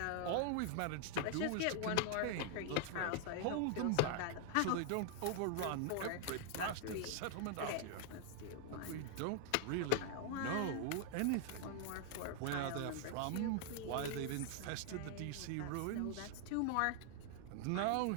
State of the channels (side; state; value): both; different; correlation 0.00